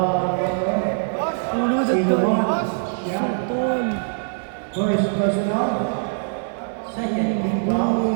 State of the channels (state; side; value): silent; left; digital silence